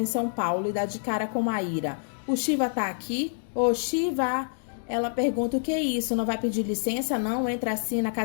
São Paulo e dá de cara com Maíra. O Shiva tá aqui? Ô, Shiva! Ela pergunta: o que é isso? Não vai pedir licença, não? Entra assim na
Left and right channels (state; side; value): silent; right; digital silence